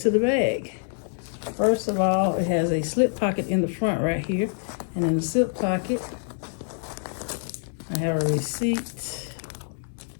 the bag. First of all, it has a slip pocket in the front right here. And in the slip pocket, I have a receipt.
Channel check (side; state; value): right; silent; 61 dB below the other